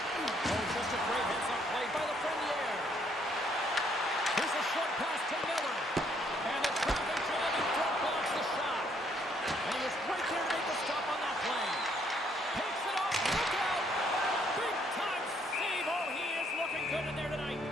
just a great heads-up play by the Lafreniere. Here's a short pass to Miller. And the traffic jam in front blocks the shot. And he was right there to make the stop on that play. Takes it off. Look out. Big-time save. Oh, he is looking good in there tonight.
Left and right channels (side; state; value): both; normal; correlation 0.68